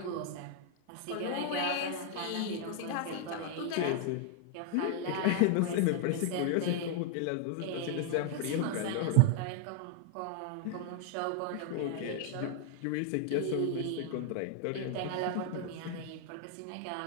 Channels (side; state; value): both; different; correlation 0.00